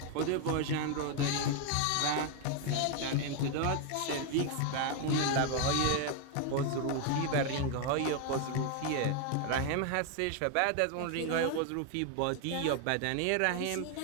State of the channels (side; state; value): both; different; correlation 0.01